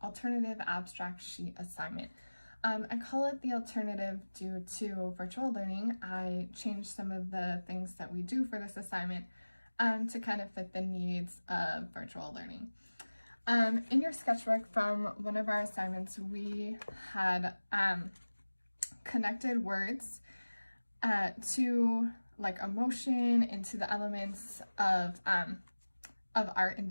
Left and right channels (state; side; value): inverted; both; correlation -1.00